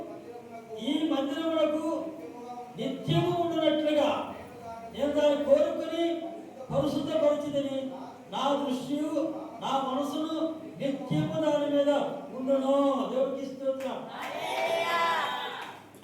ఈ మందిరములకు నిత్యము ఉండునట్లుగా నేను దాన్ని కోరుకుని పరిశుద్ధపరిచిదని నా దృష్టియు నా మనసును నిత్యము దాని మీద ఉండును. దేవుడికి స్తోత్రం.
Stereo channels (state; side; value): identical; both; correlation 1.00